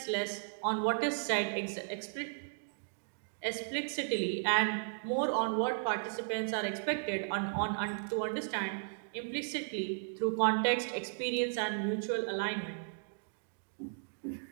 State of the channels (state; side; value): silent; left; digital silence